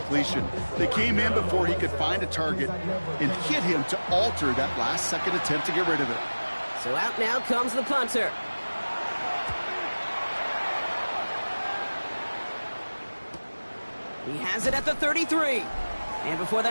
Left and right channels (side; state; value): both; inverted; correlation -1.00